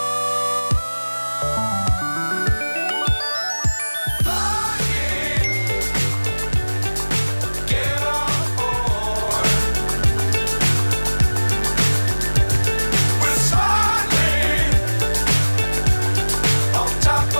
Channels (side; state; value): both; inverted; correlation -1.00